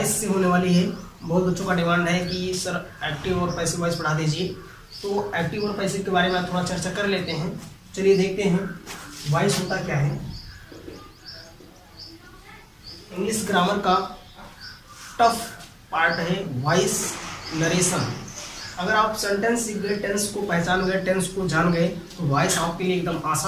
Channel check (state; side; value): identical; both; correlation 1.00